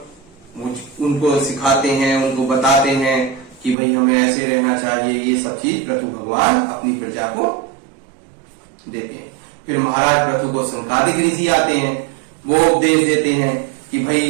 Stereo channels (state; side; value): drops out; left; at 3.8 s